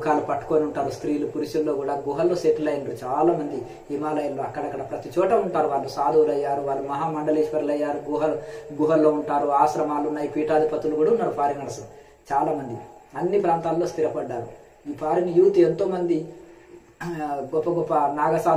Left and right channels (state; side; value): identical; both; correlation 1.00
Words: పట్టుకొని ఉంటారు. స్త్రీలు పురుషుల్లో కూడా గుహల్లో సెటిల్ అయినారు చాలా మంది హిమాలయాల్లో. అక్కడక్కడ ప్రతి చోట ఉంటారు వాళ్ళు. సాధువులు అయ్యారు, వాళ్ళు మహామండలేశ్వరులు అయ్యారు, గుహల్లో ఉంటారు. ఆశ్రమాలు ఉన్నాయి, పీఠాధిపతులు కూడా ఉన్నారు ఫారినర్స్ చాలా మంది. అన్ని ప్రాంతాల్లో స్థిరపడ్డారు. ఈ ఫారిన్ యూత్ ఎంతో మంది గొప్ప గొప్ప